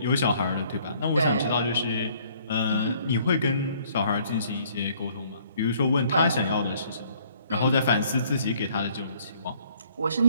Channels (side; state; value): both; inverted; correlation -0.61